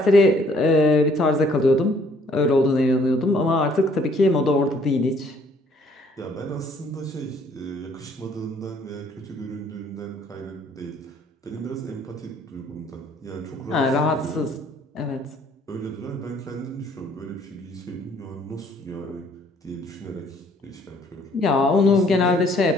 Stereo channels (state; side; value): normal; both; correlation 0.62